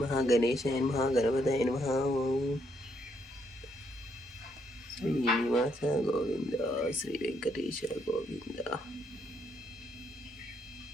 గణేశాయ నమః, గణపతాయ నమః. శ్రీనివాస గోవింద, శ్రీ వెంకటేశ గోవింద.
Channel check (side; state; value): both; normal; correlation 0.74